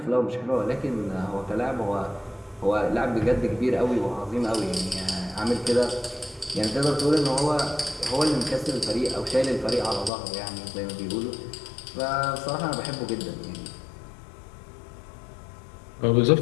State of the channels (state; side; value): drops out; right; at 10.1 s